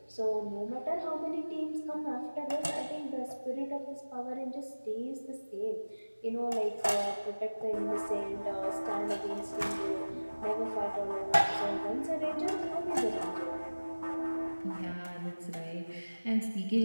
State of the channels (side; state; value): both; inverted; correlation -1.00